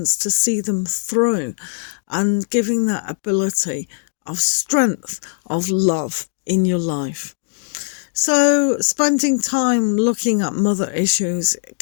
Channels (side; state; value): right; silent; digital silence